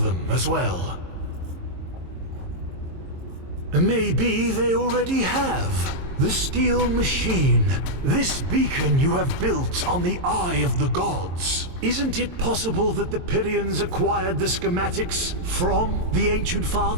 as well. Maybe they already have. The steel machine, this beacon you have built on the Eye of the Gods. Isn't it possible that the Pyrians acquired the schematics from the Ancient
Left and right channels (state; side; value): late; left; 22 ms